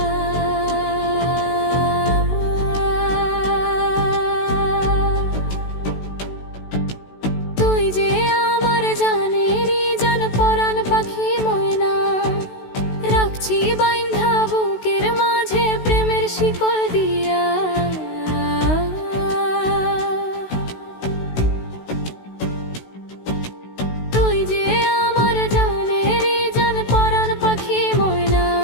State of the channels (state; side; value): late; right; 16 ms